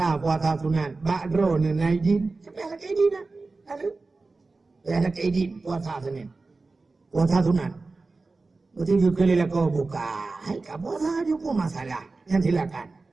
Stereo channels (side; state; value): left; quieter; 3.7 dB